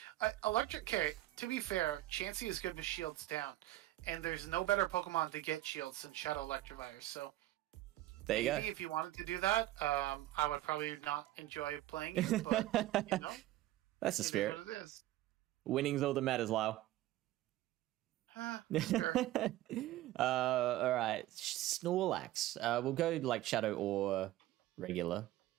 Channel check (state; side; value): quieter; left; 15.4 dB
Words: electric. Okay, to be fair, Chansey is good with shields down, and there's no better Pokemon to get shields than Shadow Electivire. So there you maybe go. If you wanted to do that, I would probably not enjoy playing it, but you know, that's the spirit. It is what it is. Winning's all that matters, Lyle. Sure. All right, Snorlax. We'll go like Shadow or regular.